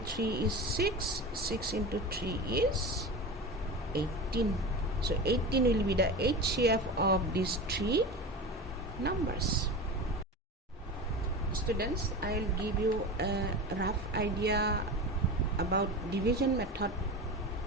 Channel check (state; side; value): normal; both; correlation 0.28